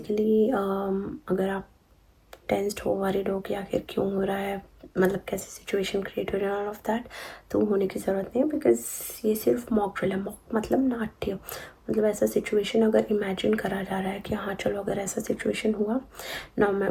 अगर आप टेंस्ड हो, वरीड हो कि आखिर क्यों हो रहा है, मतलब कैसे सिचुएशन क्रिएट हो रही है, ऑल ऑफ दैट, तो होने की ज़रूरत नहीं है बिकॉज ये सिर्फ मॉक ड्रिल है। मॉक मतलब नाट्य, मतलब ऐसा सिचुएशन अगर इमेजिन करा जा रहा है कि हाँ चलो अगर ऐसा सिचुएशन हुआ ना। मैं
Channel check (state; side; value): identical; both; correlation 1.00